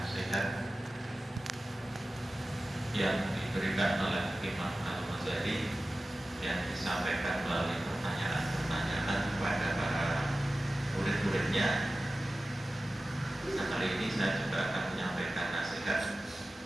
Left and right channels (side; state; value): both; normal; correlation 0.95